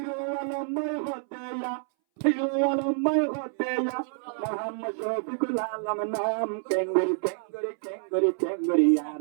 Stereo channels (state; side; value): silent; left; 59 dB below the other